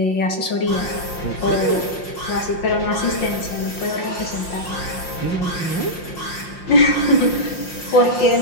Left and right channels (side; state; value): right; late; 5.7 ms